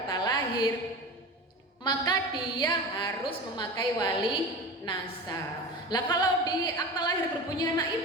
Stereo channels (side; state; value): both; normal; correlation 0.31